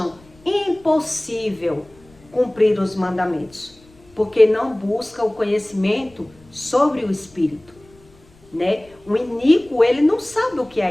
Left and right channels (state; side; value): noise; left; rumble, 28 dB below the sound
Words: impossível cumprir os mandamentos, porque não buscam o conhecimento sobre o Espírito, né? O iníquo, ele não sabe o que é